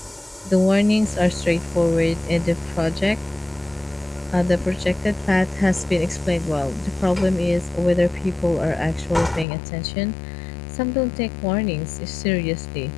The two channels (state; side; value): drops out; right; at 9.5 s